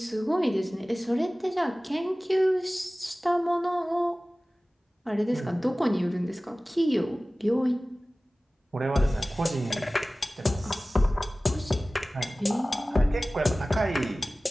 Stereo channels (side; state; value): both; normal; correlation 0.97